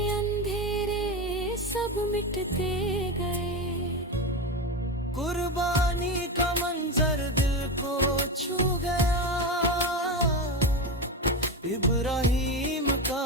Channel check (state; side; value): normal; both; correlation 0.18